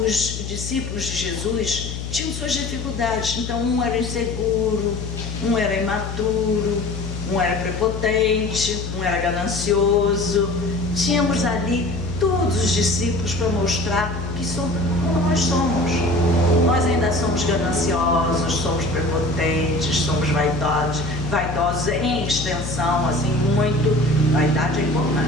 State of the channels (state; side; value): noise; left; hum, 7 dB below the sound